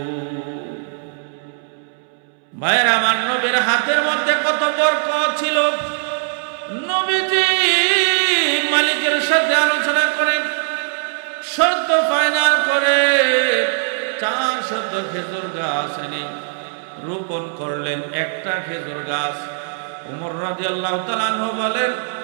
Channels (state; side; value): silent; left; 66 dB below the other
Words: ভাইয়ের আমার, নবীর হাতের মধ্যে কত বরকত ছিল। নবীজি মালিকের সাথে আলোচনা করে শর্ত ফাইনাল করে 400 খেজুর গাছ এনে রোপণ করলেন, একটা খেজুর গাছ। ওমর রাদিয়াল্লাহু তাআলা আনহু বলেন,